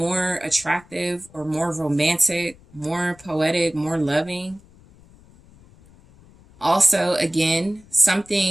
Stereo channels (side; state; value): left; noise; rumble, 26 dB below the sound